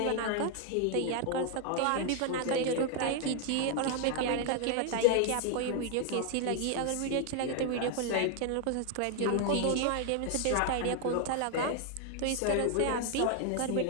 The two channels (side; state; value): both; different; correlation 0.00